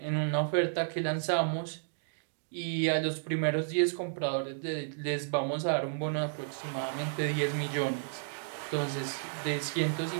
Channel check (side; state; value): left; silent; digital silence